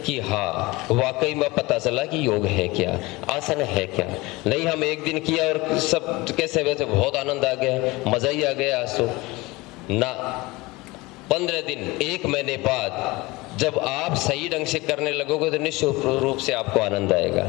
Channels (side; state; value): right; quieter; 22.1 dB